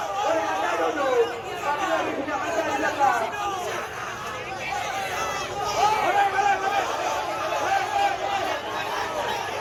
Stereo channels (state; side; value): identical; both; correlation 1.00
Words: Anda duduk, kami lagi punya masa di belakang.